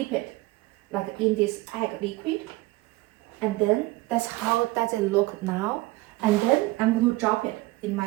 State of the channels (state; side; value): quieter; left; 20.2 dB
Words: it like in this egg liquid, and then that's how does it look now. And then I'm going to drop it in